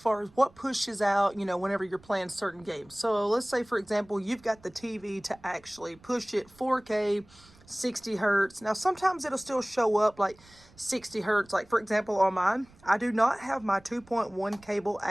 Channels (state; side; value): noise; right; rumble, 27 dB below the sound